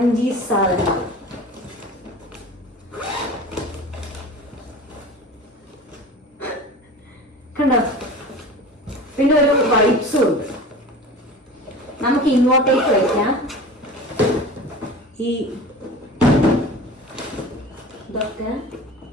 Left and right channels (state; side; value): normal; both; correlation 0.37